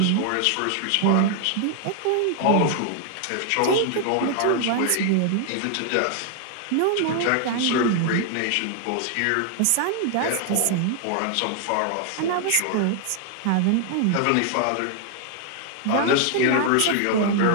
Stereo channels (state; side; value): different; both; correlation 0.00